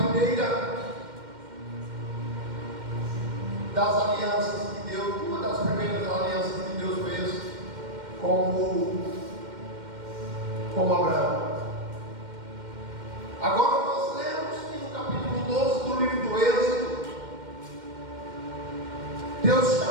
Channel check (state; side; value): late; left; 2.1 ms